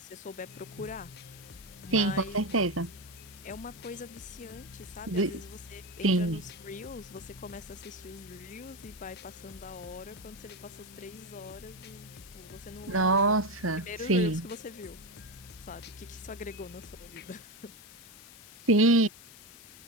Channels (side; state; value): left; noise; hiss, 18 dB below the sound